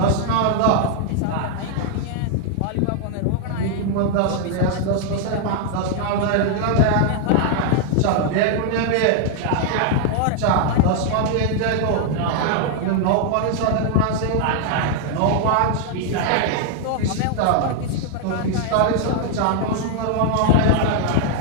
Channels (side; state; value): both; different; correlation 0.00